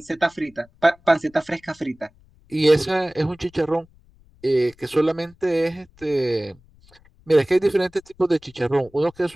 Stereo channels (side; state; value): left; noise; rumble, 29 dB below the sound